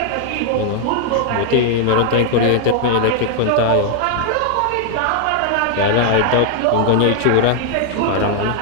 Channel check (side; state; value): both; different; correlation 0.00